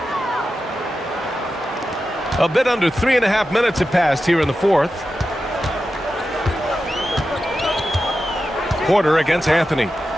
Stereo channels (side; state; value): both; normal; correlation 0.91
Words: A bit under 3.5 minutes have passed here in the fourth. Porter against Anthony.